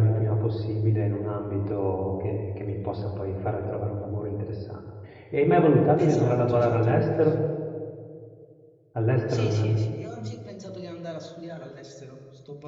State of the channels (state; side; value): identical; both; correlation 1.00